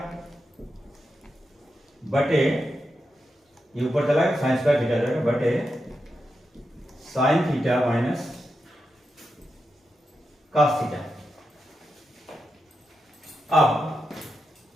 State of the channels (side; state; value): both; normal; correlation 0.87